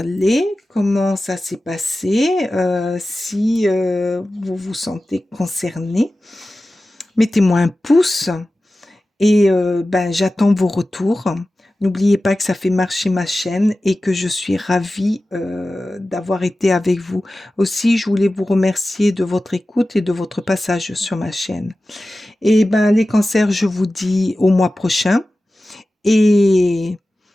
comment ça s'est passé, si vous vous sentez concerné. Mettez-moi un pouce et ben, j'attends vos retours. N'oubliez pas que ça fait marcher ma chaîne et que je suis ravie d'avoir été avec vous. Aussi, je voulais vous remercier de votre écoute et de votre passage sur ma chaîne. Et ben, les cancers, je vous dis au mois prochain et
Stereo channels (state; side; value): normal; both; correlation 0.95